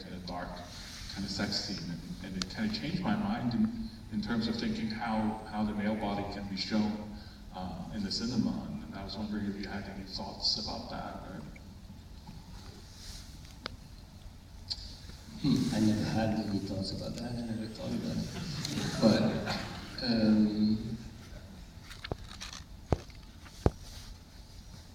of dark kind of sex scene, and it kind of changed my mind in terms of thinking how the male body can be shown in the cinema, and I was wondering if you had any thoughts about that. I never had any thoughts about that. I never thought about it. But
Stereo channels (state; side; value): identical; both; correlation 1.00